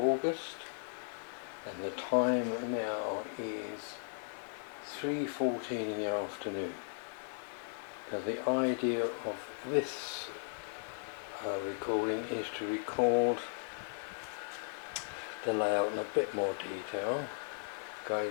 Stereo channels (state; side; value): silent; right; digital silence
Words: and the time now is 3:14 in the afternoon. Now the idea of this recording is to record the layout in a bit more detail,